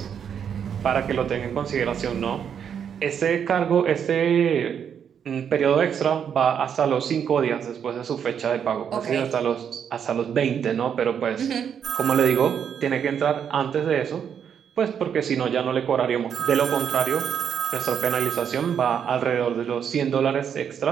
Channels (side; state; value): left; quieter; 8.0 dB